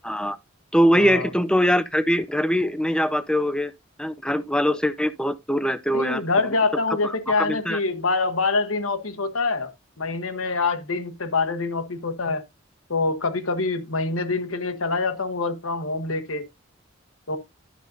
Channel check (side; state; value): both; normal; correlation 0.31